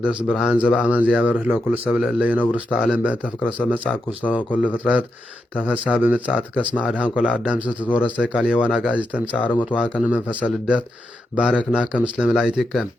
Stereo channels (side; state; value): both; normal; correlation 0.85